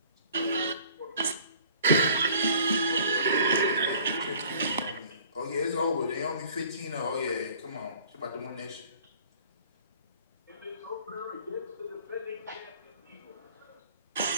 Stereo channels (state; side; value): inverted; both; correlation -0.52